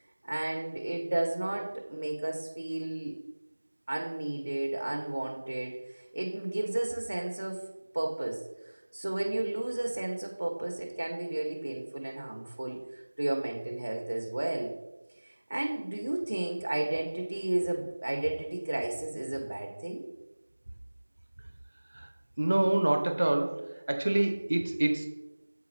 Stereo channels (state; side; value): inverted; both; correlation -1.00